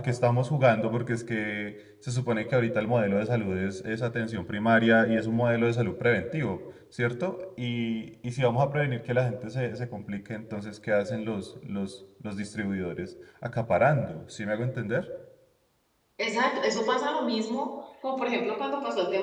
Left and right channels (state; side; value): identical; both; correlation 1.00